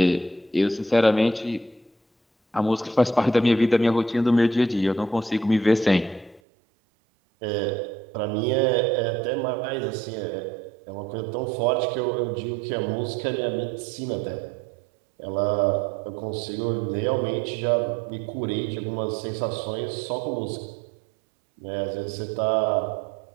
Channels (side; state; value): left; drops out; at 6.4 s